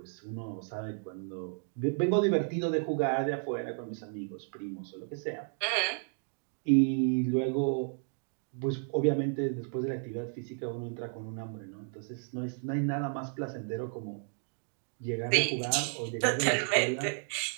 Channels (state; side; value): silent; left; 56 dB below the other